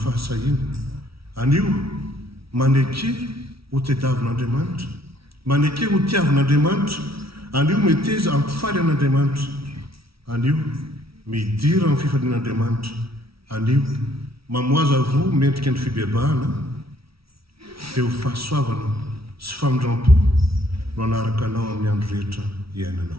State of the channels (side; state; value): left; late; 0.75 ms